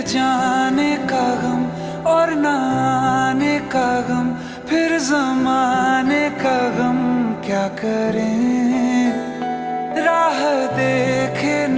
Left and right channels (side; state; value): both; identical; correlation 1.00